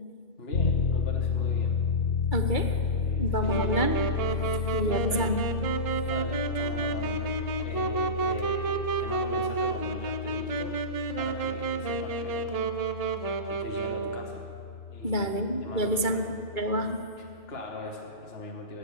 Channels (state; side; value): late; right; 2.3 ms